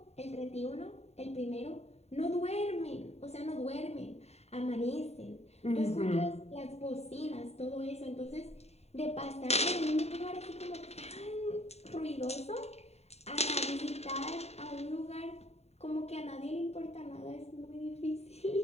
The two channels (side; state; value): right; late; 0.31 ms